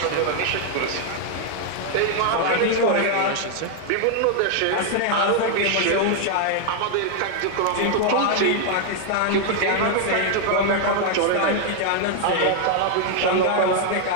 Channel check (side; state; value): both; different; correlation 0.00